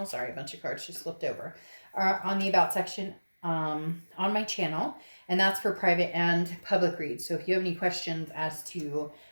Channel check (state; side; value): inverted; both; correlation -1.00